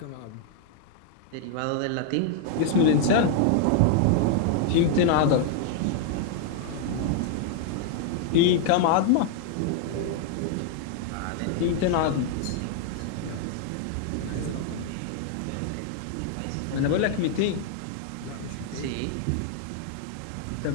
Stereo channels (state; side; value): different; both; correlation 0.00